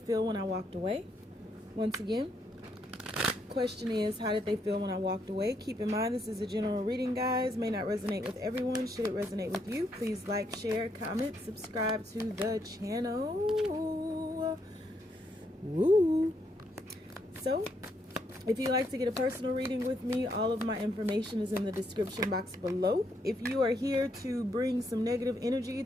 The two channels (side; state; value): both; normal; correlation 0.76